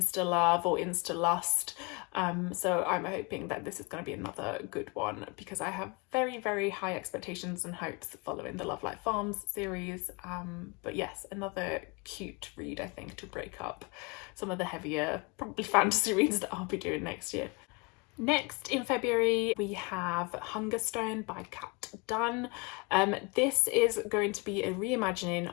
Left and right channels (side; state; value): right; quieter; 29.0 dB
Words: love or insta lust. So I'm hoping that this is going to be another good one, because I have very high expectations and hopes following the Love Like Farms series. But yes, another cute read, I think, to break up some of the heavier, probably fantasy reads that I'll be doing next year. Next in February we have Hungerstone by Kat Dunn. This is going to be a reimagining